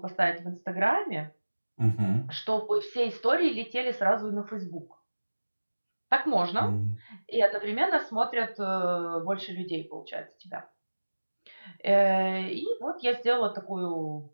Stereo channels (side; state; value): both; inverted; correlation -1.00